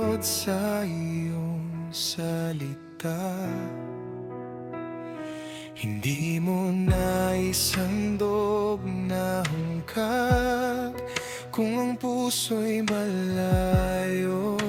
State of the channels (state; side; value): identical; both; correlation 1.00